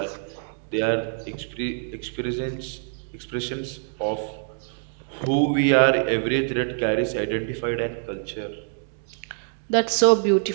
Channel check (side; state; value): left; silent; digital silence